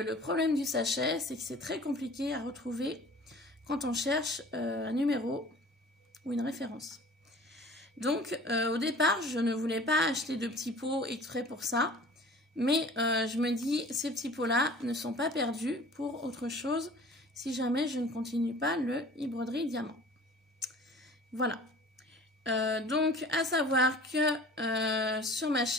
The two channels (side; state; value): both; normal; correlation 0.46